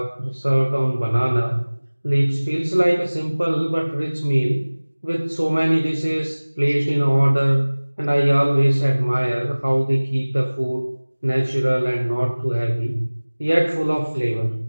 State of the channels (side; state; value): both; inverted; correlation -1.00